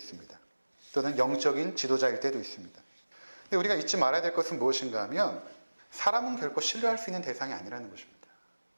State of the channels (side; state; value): both; inverted; correlation -1.00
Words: 또는 영적인 지도자일 때도 있습니다. 근데 우리가 잊지 말아야 될 것은 무엇인가 하면 사람은 결코 신뢰할 수 있는 대상이 아니라는 것입니다.